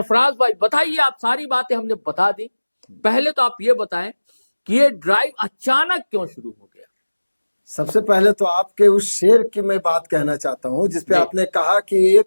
भाई बताइए, आप सारी बातें हमने बता दी, पहले तो आप ये बताएं कि ये ड्राइव अचानक क्यों शुरू हो गया? सबसे पहले तो आपके उस शेर की मैं बात कहना चाहता हूँ जिसपे आपने कहा कि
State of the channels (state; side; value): inverted; both; correlation -1.00